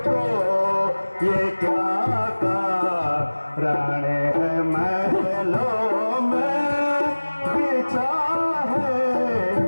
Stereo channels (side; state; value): both; inverted; correlation -1.00